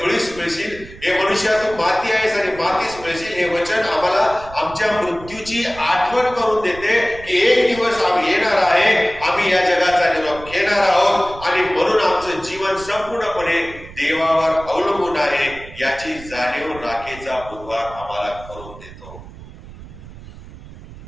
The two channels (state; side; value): noise; right; rumble, 17 dB below the sound